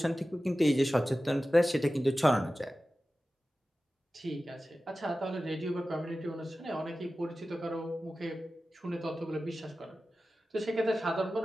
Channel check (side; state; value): both; normal; correlation 0.95